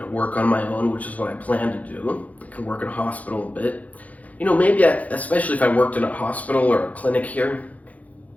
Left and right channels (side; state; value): right; late; 0.073 ms